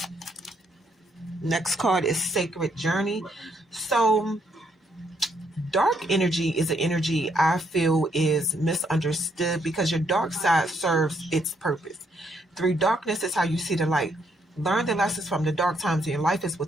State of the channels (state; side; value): normal; both; correlation 0.73